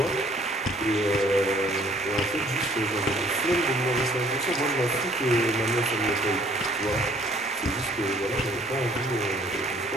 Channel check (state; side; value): normal; both; correlation 0.58